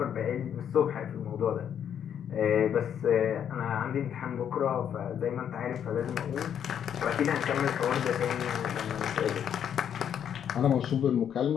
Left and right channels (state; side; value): quieter; right; 8.9 dB